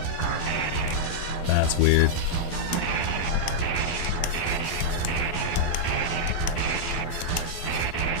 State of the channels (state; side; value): late; right; 12 ms